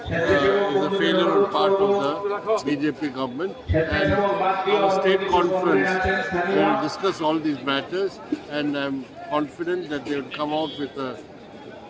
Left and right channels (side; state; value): both; identical; correlation 1.00